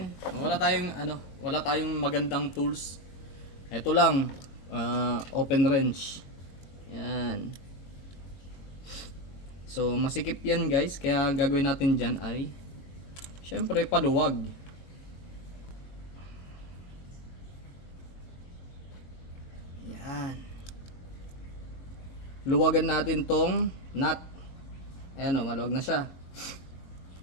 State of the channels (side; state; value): right; late; 22 ms